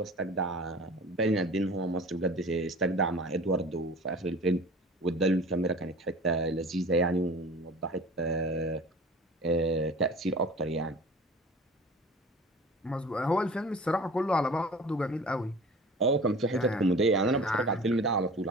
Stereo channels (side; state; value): both; normal; correlation 0.41